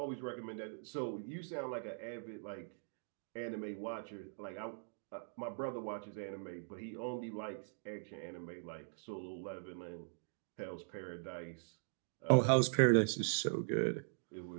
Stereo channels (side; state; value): left; silent; digital silence